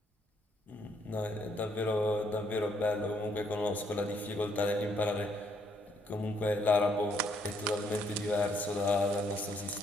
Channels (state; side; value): normal; both; correlation 0.71